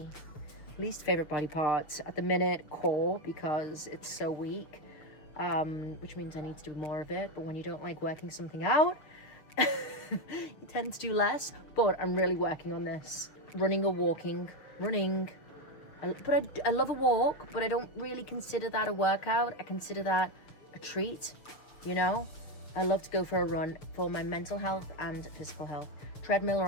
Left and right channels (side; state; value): right; late; 6.7 ms